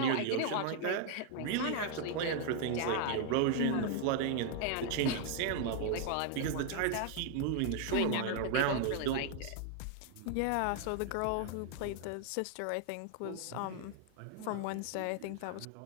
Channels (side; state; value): both; different; correlation 0.00